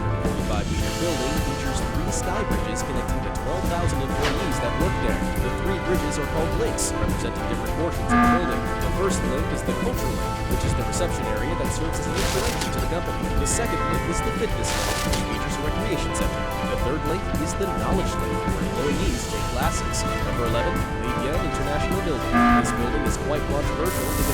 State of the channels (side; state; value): both; identical; correlation 1.00